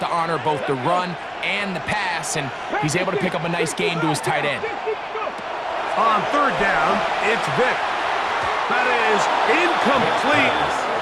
to honor both the run and the pass, and he's able to pick up a nice gain to his tight end. On 3rd down, it's Vic. That is incomplete.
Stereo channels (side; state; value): both; identical; correlation 1.00